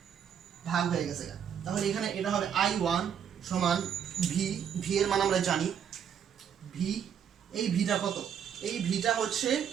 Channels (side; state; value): left; quieter; 8.3 dB